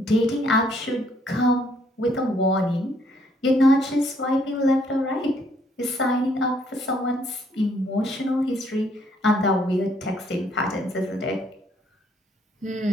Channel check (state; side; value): normal; both; correlation 0.67